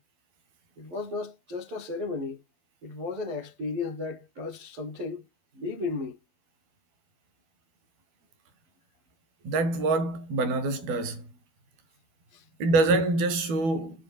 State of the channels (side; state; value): left; late; 12 ms